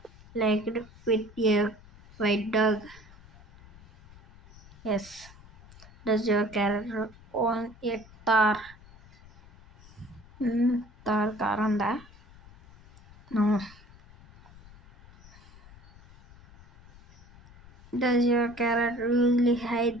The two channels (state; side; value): noise; left; rumble, 23 dB below the sound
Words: liked with a white dog? Yes. Does your character own a Thar? Thar car ఉందా? No. Does your character usually hide